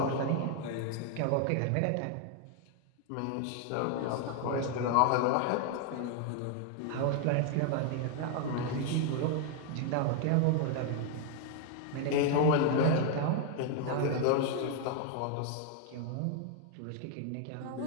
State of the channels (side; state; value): both; different; correlation 0.00